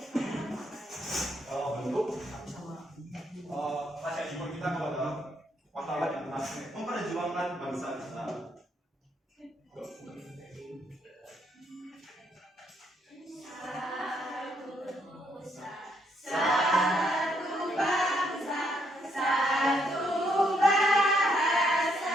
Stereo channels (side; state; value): both; normal; correlation 0.73